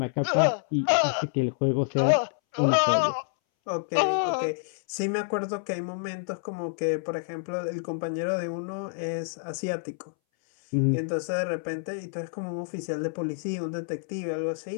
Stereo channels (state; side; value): silent; right; 59 dB below the other